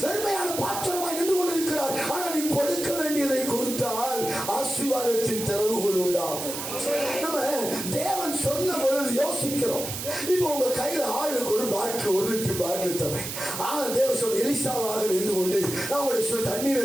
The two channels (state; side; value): noise; right; hiss, 6 dB below the sound